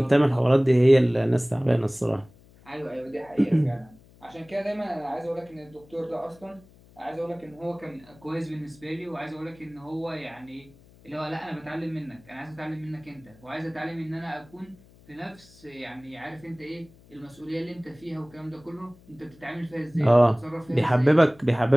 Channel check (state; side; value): noise; left; hum, 26 dB below the sound